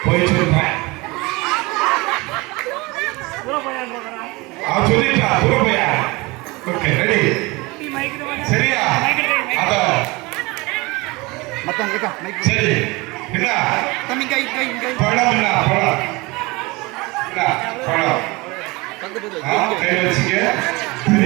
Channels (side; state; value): left; quieter; 24.1 dB